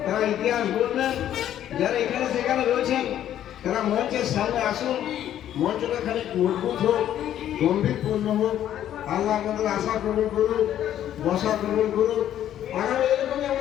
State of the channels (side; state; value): right; quieter; 11.2 dB